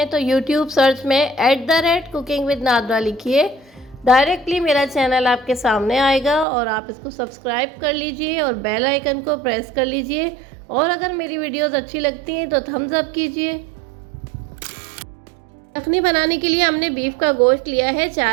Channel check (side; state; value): left; drops out; at 6.5 s